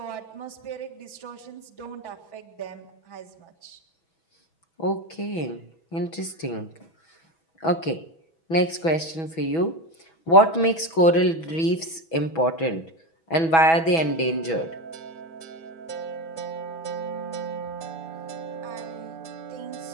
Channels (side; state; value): right; late; 6.1 ms